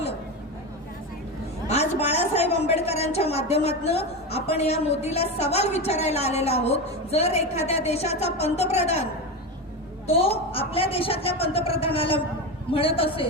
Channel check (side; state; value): both; normal; correlation 0.18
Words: आज बाळासाहेब आंबेडकरांच्या माध्यमातून आपण या मोदीला सवाल विचारायला आलेला आहोत. जर एखाद्या देशाचा पंतप्रधान तो आपल्या देशातल्या पंतप्रधानाला म्हणत